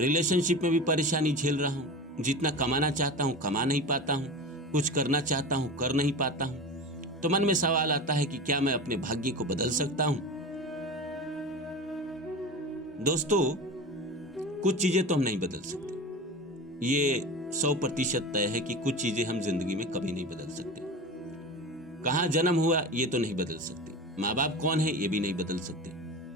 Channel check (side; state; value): both; normal; correlation 0.30